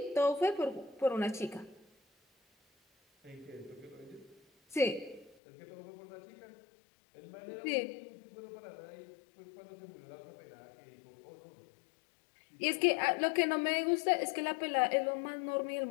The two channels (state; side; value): drops out; right; at 5.4 s